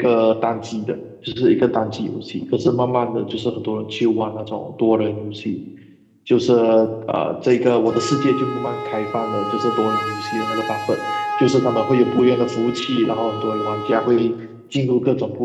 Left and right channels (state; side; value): identical; both; correlation 1.00